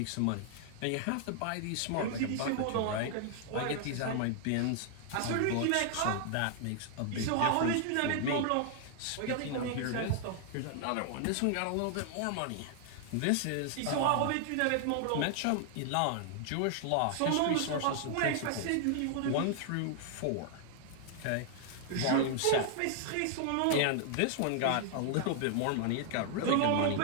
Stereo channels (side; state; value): both; different; correlation 0.00